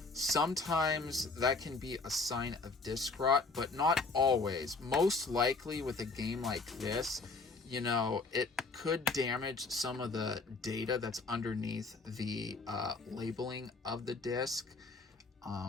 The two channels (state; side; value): quieter; right; 3.8 dB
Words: sometimes that can be a sign of disc rot, but not always. Most likely with a game like this, you know, it could damage some of the data that's underneath the labeling of the disc.